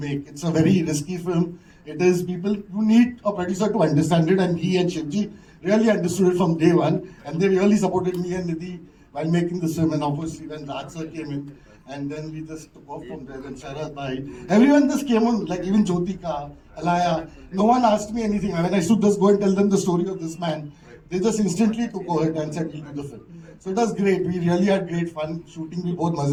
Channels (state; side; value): identical; both; correlation 1.00